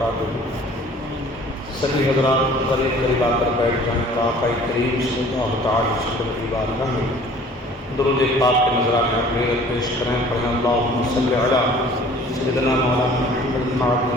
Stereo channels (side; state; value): both; normal; correlation 0.50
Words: سبھی حضرات قریب آ کر بیٹھ جائیں اور آقا کریم صلی اللہ تعالی وسلم کی بارگاہ میں درود پاک کے نذرانے اپنے پیش کریں۔ پڑھیں اللہم صلی علی سیدنا مولانا محمد